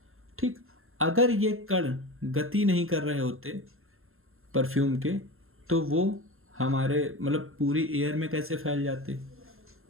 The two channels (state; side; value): late; left; 0.61 ms